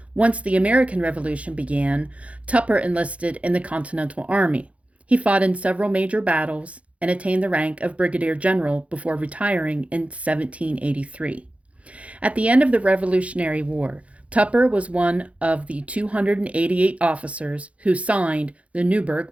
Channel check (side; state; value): left; late; 0.064 ms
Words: Once the American Revolution began, Tupper enlisted in the Continental Army. He fought in several major battles and attained the rank of brigadier general before retiring in 1783. At the end of the Revolutionary War, Tupper was one of the 288 officers who signed the